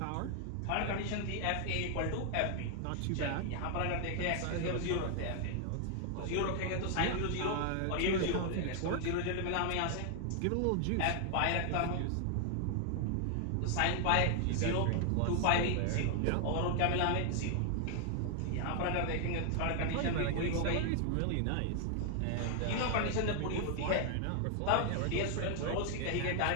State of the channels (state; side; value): different; both; correlation 0.00